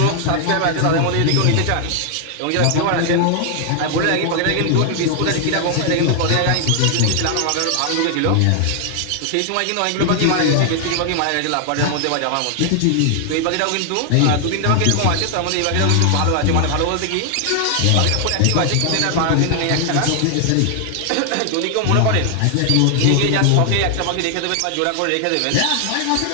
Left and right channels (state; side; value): different; both; correlation 0.00